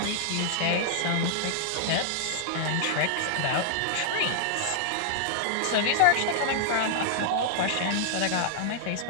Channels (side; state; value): both; different; correlation -0.01